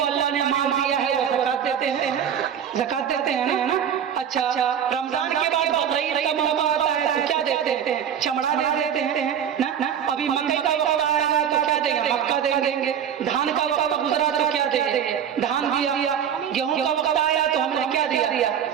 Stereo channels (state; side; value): quieter; left; 8.7 dB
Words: अल्लाह ने माल दिया है वो ज़कात देते हैं, ज़कात देते हैं ना? अच्छा, रमजान के बाद बकरीद का मौका आता है तो क्या देते हैं? चमड़ा दे देते हैं ना? अभी मकई का वक्त आएगा तो क्या देंगे? मक्का दे देंगे। धान का वक्त गुजरा तो क्या देंगे? धान दिया। गेहूं का वक्त आया तो हमने क्या दिया?